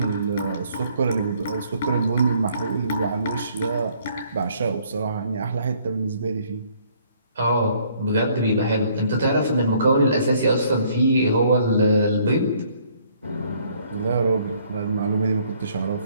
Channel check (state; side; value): inverted; both; correlation -0.63